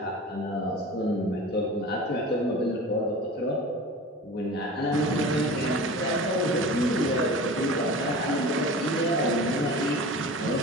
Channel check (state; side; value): normal; both; correlation 0.36